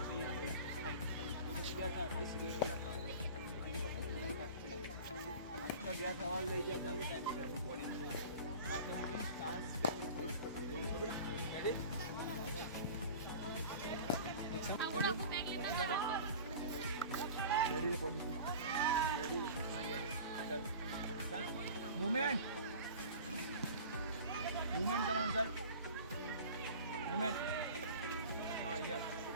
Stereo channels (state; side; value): inverted; both; correlation -0.39